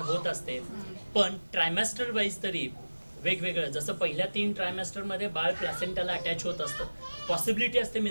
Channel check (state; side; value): inverted; both; correlation -1.00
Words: असते. पण ट्रायमॅस्टर वाईज तरी वेगवेगळं, जसं पहिल्या 3 ट्रायमॅस्टरमध्ये बाळ प्लॅसेंटाला अटॅच होत असतं, पॉसिबिलिटी असते